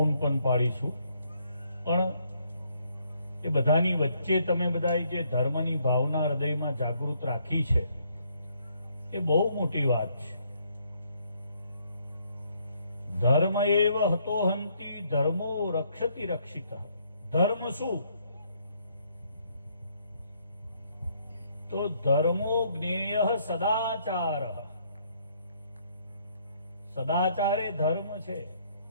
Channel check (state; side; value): inverted; both; correlation -0.70